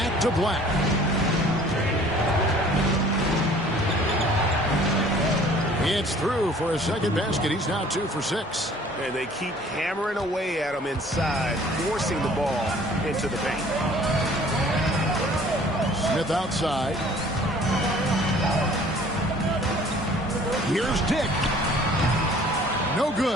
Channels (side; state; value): both; normal; correlation 0.53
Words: to Black. It's through for a second basket. He's now 2 for 6. And they keep hammering away at him inside, forcing the ball into the paint. Smith outside. Here's Dick. No